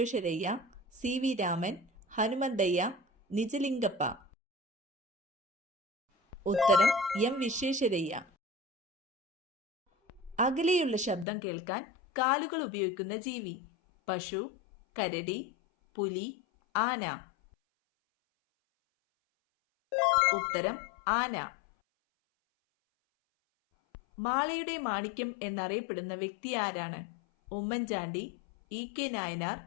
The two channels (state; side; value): drops out; right; at 11.2 s